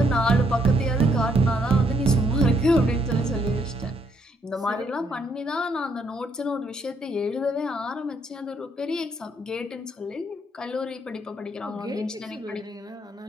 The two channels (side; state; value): both; normal; correlation 0.72